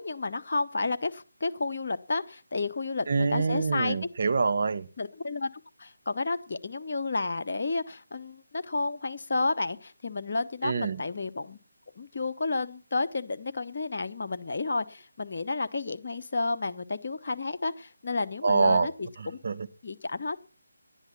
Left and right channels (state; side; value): inverted; both; correlation -0.88